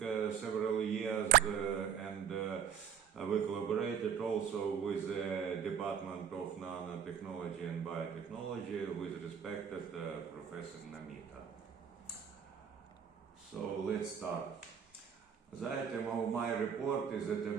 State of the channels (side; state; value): left; quieter; 7.9 dB